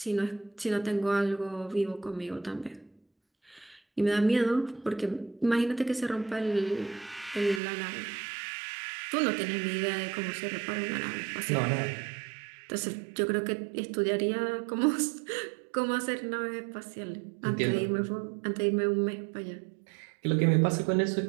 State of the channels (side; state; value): left; drops out; at 7.6 s